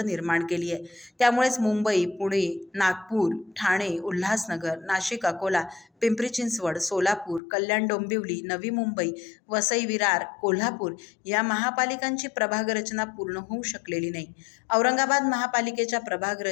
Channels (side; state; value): right; drops out; at 7.4 s